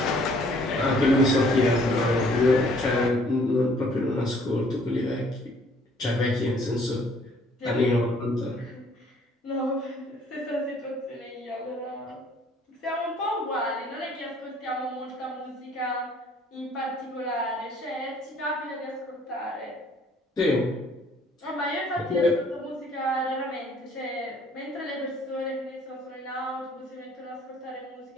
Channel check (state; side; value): normal; both; correlation 0.59